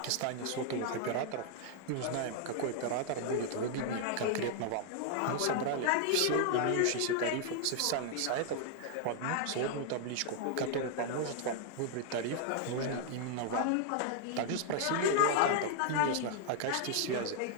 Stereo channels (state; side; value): different; both; correlation 0.00